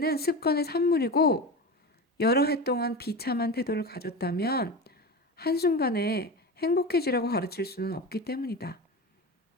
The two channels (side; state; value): both; normal; correlation 0.25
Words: 습관의 산물이고 여러 해 동안 비참한 태도를 가졌다면 한순간에 행복해지라고 가르칠 수는 없기 때문이다.